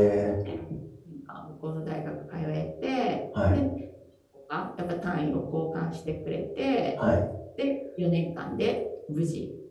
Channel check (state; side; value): identical; both; correlation 1.00